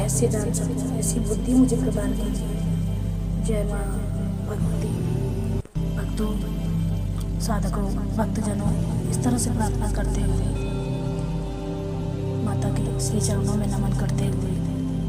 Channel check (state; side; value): identical; both; correlation 1.00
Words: जान सकूं, ऐसी बुद्धि मुझे प्रदान कीजिए। जय माँ भगवती। भक्तों, साधकों, भक्तजनों, इस तरह से प्रार्थना करते हुए माता के श्री चरणों में नमन करते हुए